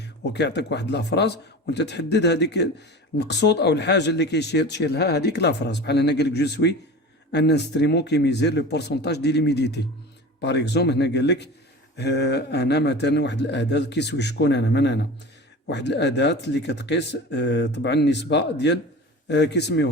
وكيعطيك واحد لا فراز وانت تحدد هذيك المقصود او الحاجه اللي تشير لها هذيك لا فراز. بحال هنا قال لك جو سوي ان انسترومون كي ميزير لو بورسونتاج دي ليميديتي. باغ اكزومبل هنا قال لك انا مثلا واحد الاداه كيسوي شكون انا من انا واحد الاداه اللي كتقيس طبعا النسبه ديال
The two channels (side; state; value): both; normal; correlation 0.34